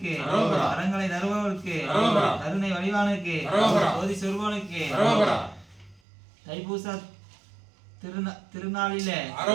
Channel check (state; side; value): drops out; left; at 6.0 s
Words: வரங்களை தருபவருக்கு கருணை வடிவானுக்கு ஜோதி சொருபவனுக்கு தைப்பூச திருநாளிலே